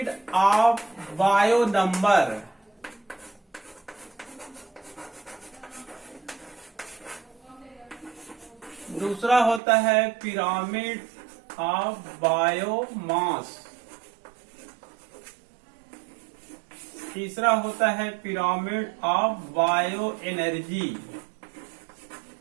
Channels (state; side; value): drops out; left; at 9.6 s